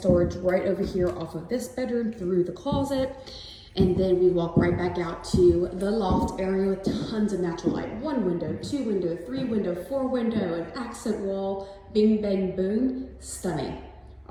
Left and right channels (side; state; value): both; identical; correlation 1.00